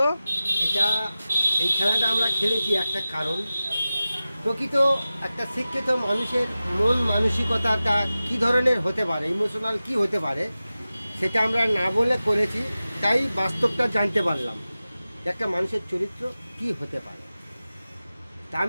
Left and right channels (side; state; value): both; inverted; correlation -0.95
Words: এটা এই খেলাটা আমরা খেলেছি একটা কারণ, প্রকৃত একটা শিক্ষিত মানুষের মন মানসিকতাটা কী ধরনের হতে পারে, ইমোশনাল কি হতে পারে, সেটা আমরা না বলে করেছি। তাই বাস্তবটা জানতে পারলাম যে একটা মানুষের চরিত্র কি হতে পারে। তা